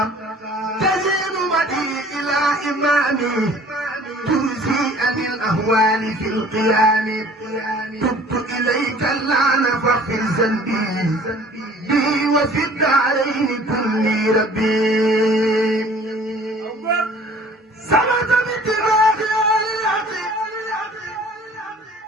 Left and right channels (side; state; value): both; normal; correlation 0.50